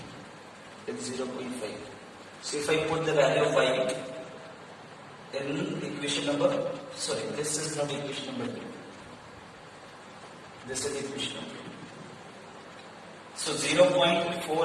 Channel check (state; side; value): identical; both; correlation 1.00